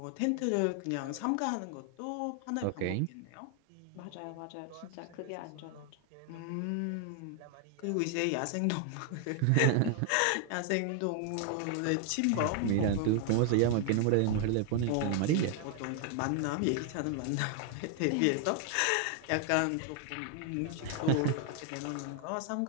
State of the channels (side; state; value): both; different; correlation 0.00